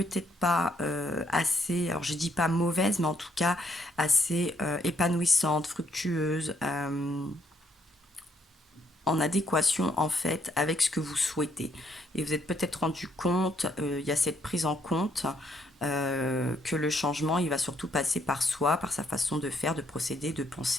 pas assez, alors je dis pas mauvaise, mais en tout cas assez épanouissante, fructueuse, en adéquation en fait avec ce que vous souhaitez. Et vous êtes peut-être rendu compte, il y a cette prise en compte que le changement, il va surtout passer par soi, par sa façon de faire, de procéder, de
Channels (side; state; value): both; normal; correlation 0.71